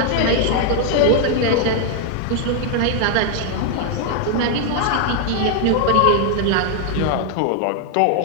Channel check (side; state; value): both; different; correlation 0.00